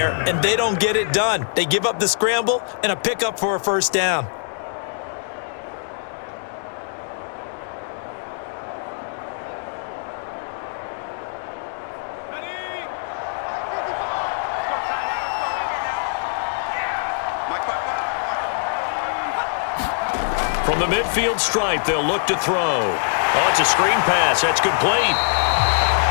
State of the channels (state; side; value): silent; right; digital silence